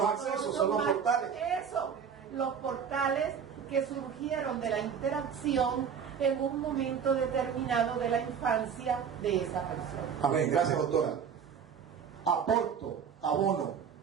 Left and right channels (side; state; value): left; quieter; 7.3 dB